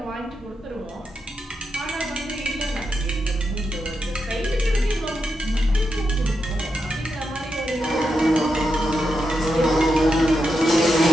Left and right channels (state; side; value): normal; both; correlation 0.86